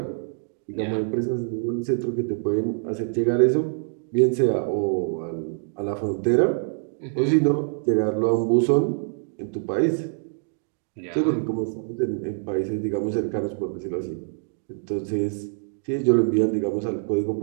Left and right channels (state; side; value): silent; left; digital silence